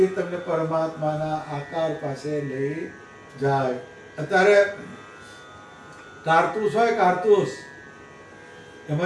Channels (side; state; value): both; identical; correlation 1.00